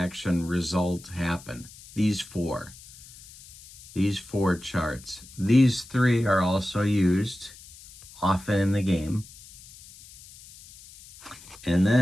result happen. These 4 charts. These 3 are also used often in the game. And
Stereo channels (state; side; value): noise; left; hiss, 20 dB below the sound